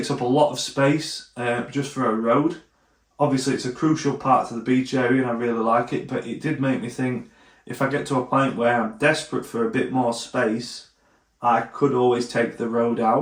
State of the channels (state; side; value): identical; both; correlation 1.00